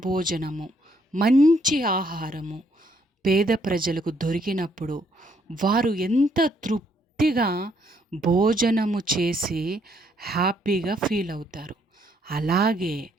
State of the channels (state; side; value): normal; both; correlation 0.70